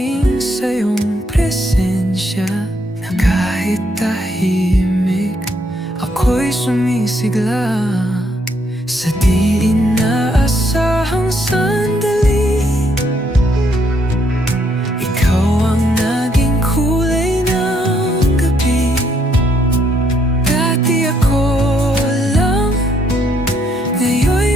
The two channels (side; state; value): both; normal; correlation 0.72